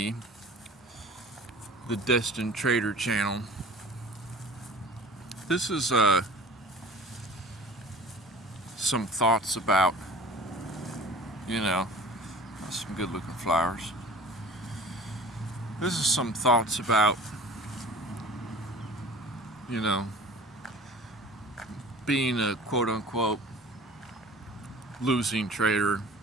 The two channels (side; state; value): both; normal; correlation 0.44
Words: the Destined Trader channel. This is some thoughts about, some good looking flowers. This is some thoughts about, being a quote unquote losing trader,